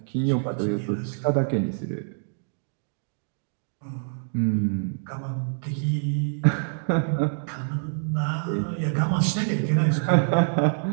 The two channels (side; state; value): left; silent; digital silence